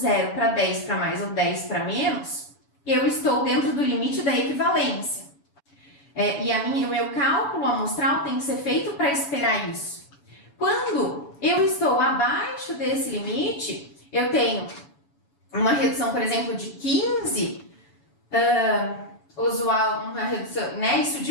para 10 para mais ou 10 para menos, eu estou dentro do limite da equivalência. O meu cálculo amostral tem que ser feito para esperar isso. Quando eu estou abaixo desse limite, eu tenho uma redução, por exemplo, de 15, usual, uma redução, né? Isso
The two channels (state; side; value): late; right; 7.0 ms